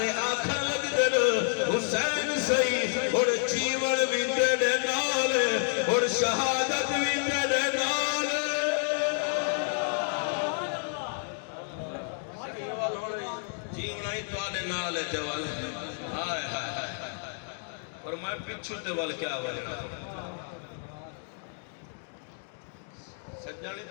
آنکھاں لگ دے حسین صحیح اور جیون بھی دے نال اور شہادت بھی دے نال جیون ہی تو آنے نال ہے جوال ہائے ہائے ہائے اور میں پچھو تے وال کیا والے سجانی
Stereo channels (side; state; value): right; silent; 58 dB below the other